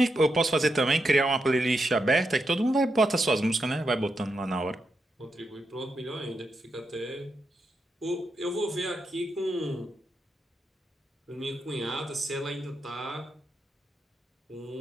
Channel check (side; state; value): both; normal; correlation 0.84